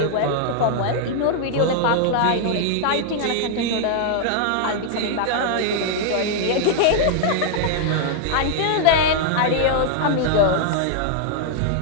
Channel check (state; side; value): different; both; correlation -0.01